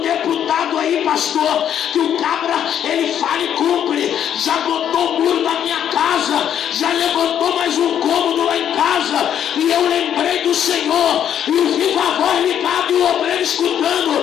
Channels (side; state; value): right; quieter; 9.6 dB